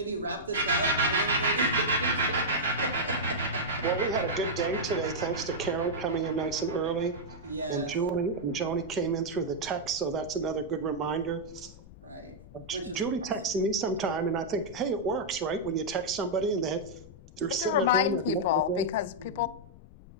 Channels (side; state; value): left; noise; rumble, 18 dB below the sound